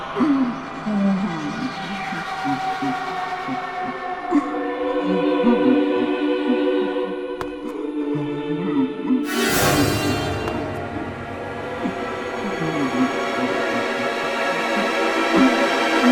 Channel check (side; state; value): both; identical; correlation 1.00